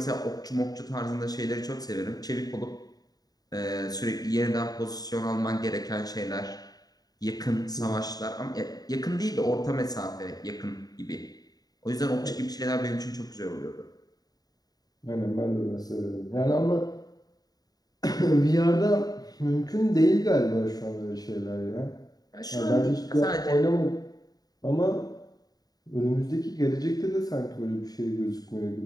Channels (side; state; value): right; late; 0.18 ms